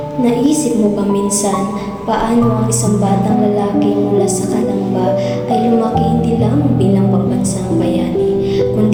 Naisip mo ba minsan paano ang isang batang lalaki mula sa kalamba ay lumaki hindi lamang bilang pambansang bayani,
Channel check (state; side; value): identical; both; correlation 1.00